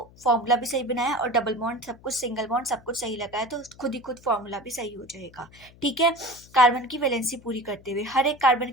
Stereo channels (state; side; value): noise; left; hum, 24 dB below the sound